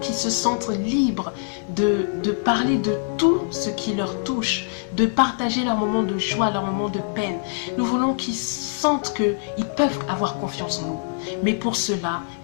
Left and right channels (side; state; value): right; silent; digital silence